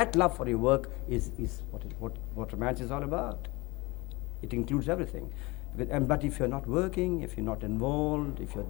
love for your work is what romance is all about. It includes everything. But if you're not working, if you're not involved, if you're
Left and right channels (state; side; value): quieter; right; 23.9 dB